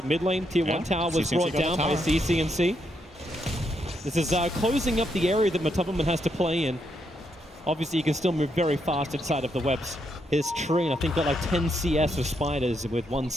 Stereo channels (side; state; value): both; normal; correlation 0.79